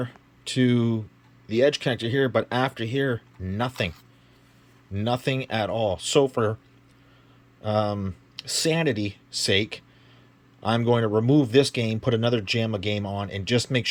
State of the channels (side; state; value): both; identical; correlation 1.00